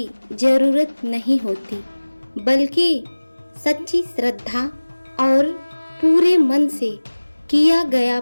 जरूरत नहीं होती, बल्कि सच्ची श्रद्धा और पूरे मन से किया गया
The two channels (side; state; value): both; inverted; correlation -1.00